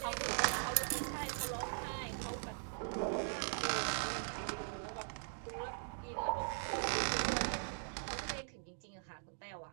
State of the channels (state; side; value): silent; left; digital silence